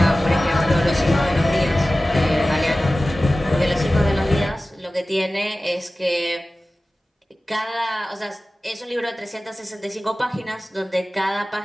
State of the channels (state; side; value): normal; both; correlation 0.96